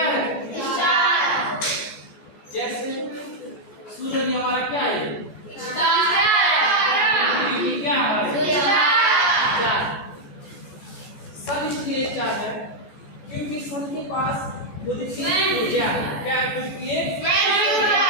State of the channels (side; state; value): right; late; 14 ms